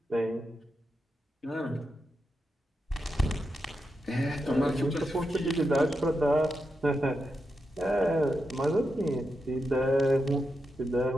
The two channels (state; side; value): normal; both; correlation 0.86